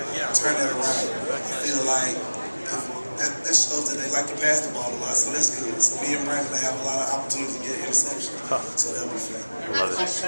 turn that around. I feel like that shows that they like to pass the ball a lot, so that's good. So me and Brandon have a lot of opportunities to get interceptions, so that'll be fun. Does it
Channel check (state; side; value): inverted; both; correlation -1.00